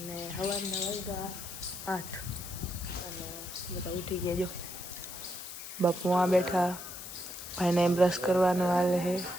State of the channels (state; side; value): noise; left; hiss, 10 dB below the sound